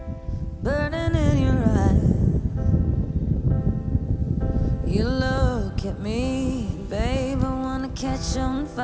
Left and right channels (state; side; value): identical; both; correlation 1.00